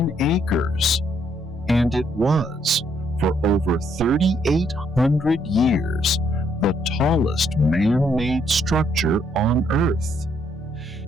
acres, and it was, for over 3,800 years, the tallest man-made structure on Earth.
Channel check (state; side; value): normal; both; correlation 0.71